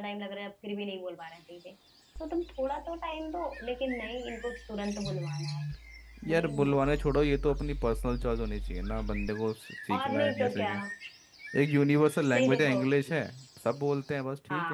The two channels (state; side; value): identical; both; correlation 1.00